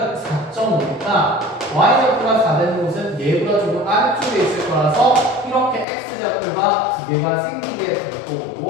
4.5니까 y좌표가 4 되는 곳은 얘보다 조금 아래쪽에 있을 거라서 이렇게 x좌표가 두 개가 생기게 될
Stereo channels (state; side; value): drops out; right; at 5.9 s